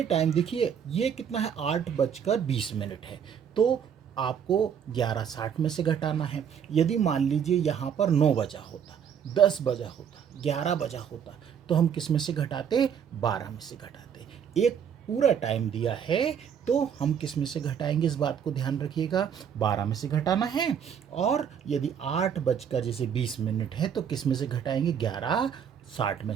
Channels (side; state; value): left; quieter; 8.0 dB